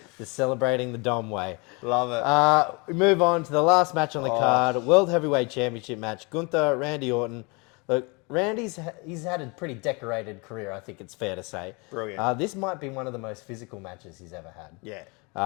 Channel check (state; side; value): quieter; right; 29.7 dB